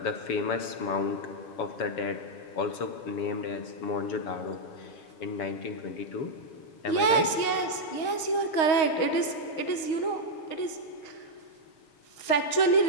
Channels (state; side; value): late; right; 6.4 ms